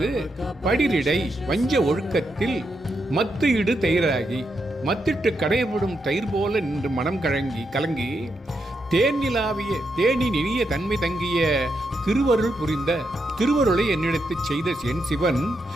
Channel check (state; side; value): normal; both; correlation 0.82